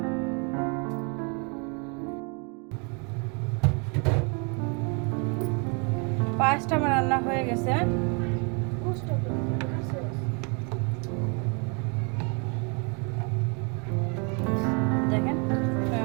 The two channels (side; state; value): left; quieter; 34.5 dB